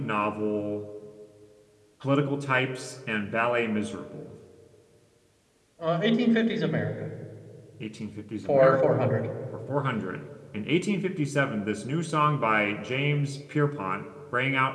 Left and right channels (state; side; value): identical; both; correlation 1.00